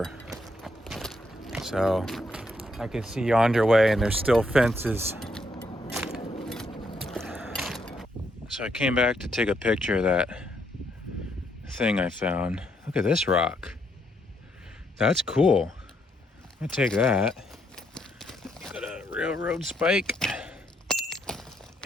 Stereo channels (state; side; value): normal; both; correlation 0.75